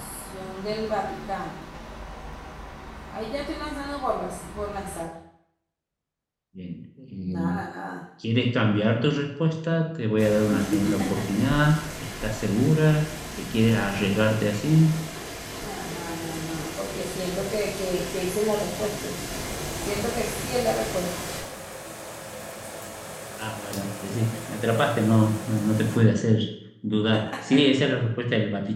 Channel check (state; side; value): identical; both; correlation 1.00